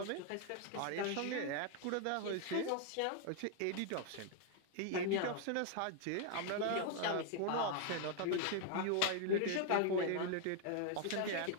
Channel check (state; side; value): different; both; correlation 0.00